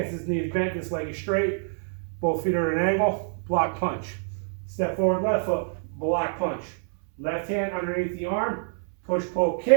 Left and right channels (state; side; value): silent; left; 60 dB below the other